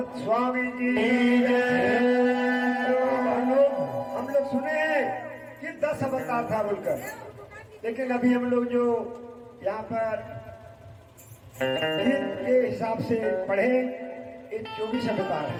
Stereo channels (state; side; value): identical; both; correlation 1.00